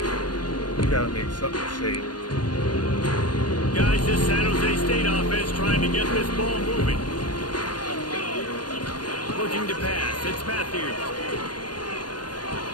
gotta make something safe. Guys, this San Jose State offense trying to get this ball moving. Looking to pass. It's Matthews.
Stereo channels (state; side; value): late; right; 0.70 ms